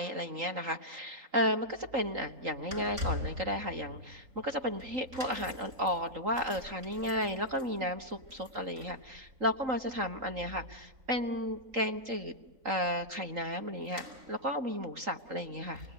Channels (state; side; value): late; left; 3.8 ms